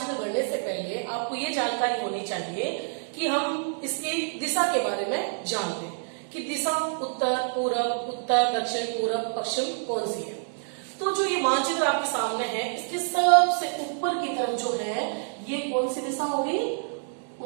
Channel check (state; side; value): silent; left; digital silence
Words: गढ़ने से पहले आपको ये जानकारी होनी चाहिए कि हम इसकी दिशा के बारे में जानते हैं कि दिशा उत्तर पूरब, उत्तर दक्षिण, पूरब पश्चिम कौन सी है। तो जो ये मानचित्र आपके सामने है, इसके सबसे ऊपर की तरफ जो है ये कौन सी दिशा होगी?